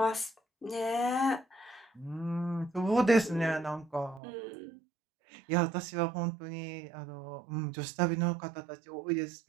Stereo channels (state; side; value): drops out; left; at 4.2 s